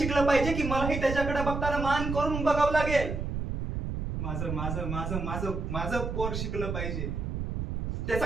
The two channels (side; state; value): right; noise; rumble, 3 dB below the sound